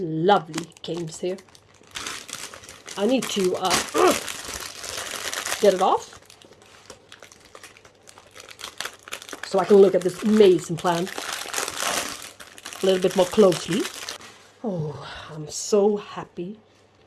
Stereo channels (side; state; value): both; identical; correlation 1.00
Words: lovely canes here. I need to get it off so I can look at this amazing plant a little bit more closely. Oh, I'm so happy.